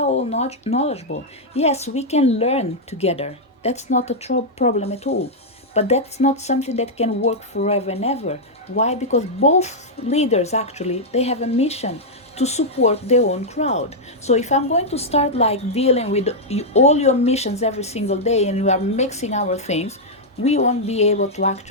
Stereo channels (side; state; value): both; normal; correlation -0.05